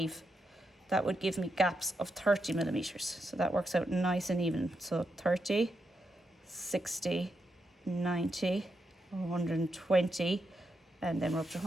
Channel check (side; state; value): both; normal; correlation 0.84